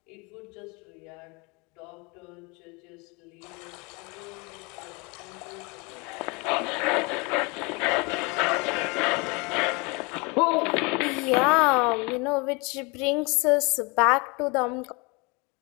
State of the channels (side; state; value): right; quieter; 28.7 dB